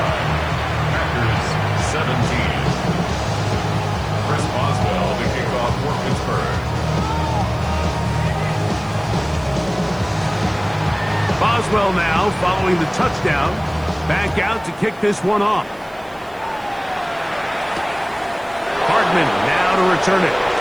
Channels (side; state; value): right; noise; hiss, 28 dB below the sound